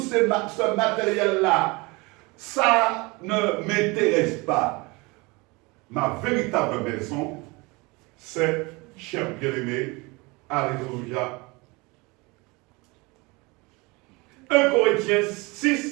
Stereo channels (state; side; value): quieter; left; 25.6 dB